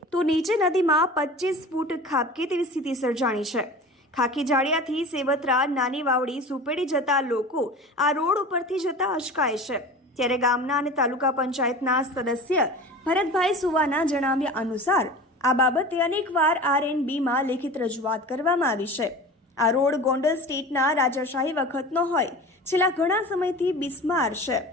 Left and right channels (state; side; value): normal; both; correlation 0.36